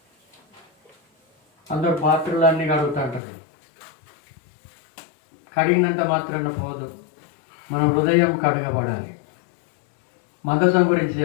అందరూ పాత్రలన్నీ కడుగుతుంటారు, కడిగినంత మాత్రాన పోదు. మన హృదయం కడగబడాలి. మందసం గురించి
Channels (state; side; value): drops out; right; at 3.2 s